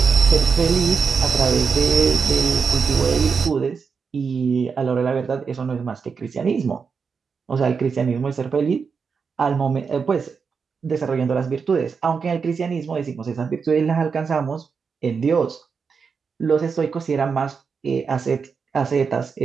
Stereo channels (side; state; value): left; quieter; 5.6 dB